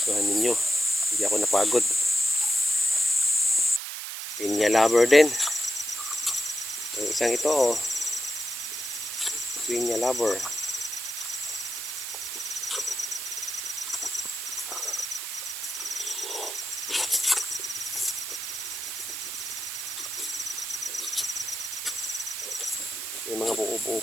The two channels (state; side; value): noise; right; hiss, 6 dB below the sound